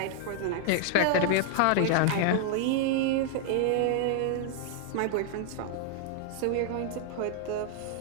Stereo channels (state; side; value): different; both; correlation 0.00